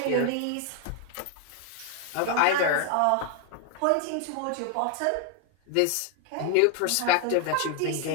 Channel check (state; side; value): different; both; correlation 0.00